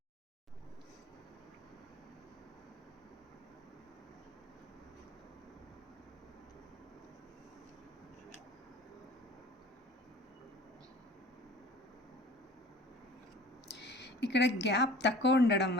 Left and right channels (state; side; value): normal; both; correlation 0.45